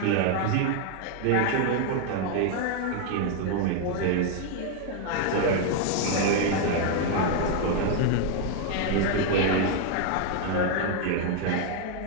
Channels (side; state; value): both; different; correlation 0.00